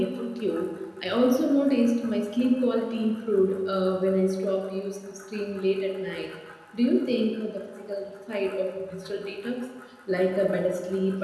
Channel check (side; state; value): both; identical; correlation 1.00